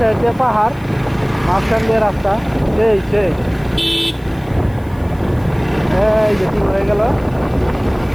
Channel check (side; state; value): left; noise; hiss, 28 dB below the sound